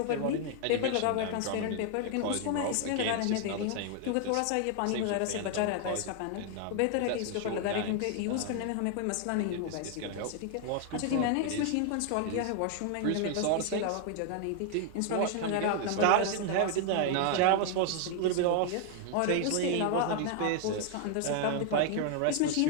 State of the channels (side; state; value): both; different; correlation 0.00